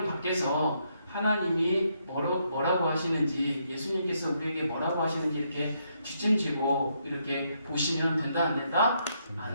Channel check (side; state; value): both; inverted; correlation -0.76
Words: 밖에서 하나님이 뭐라고 하시는지, 예수님께서 우리에게 뭐라고 하시는지 이렇게 뒷짐지고 이렇게 보시면 된다 안 된다?